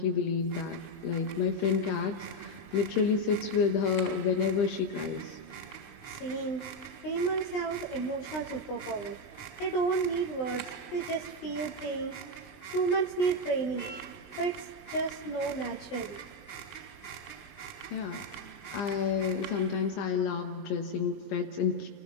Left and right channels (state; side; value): late; right; 20 ms